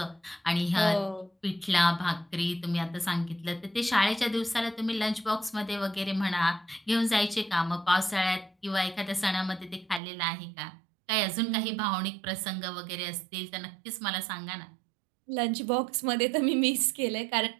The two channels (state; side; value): drops out; left; at 10.0 s